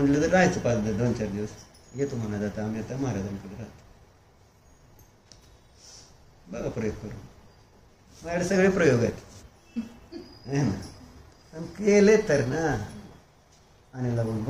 तर राहायचं 2-4 दिवस. येतो म्हणा जाता आम्ही आता महाराजांकडे राहतो. बघा प्रयोग करून. माझ्याकडे सगळे प्रयोग आहेत ना, केले तर ना आणि लागून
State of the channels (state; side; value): identical; both; correlation 1.00